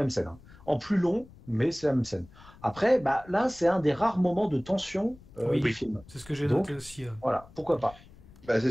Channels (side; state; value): left; noise; rumble, 23 dB below the sound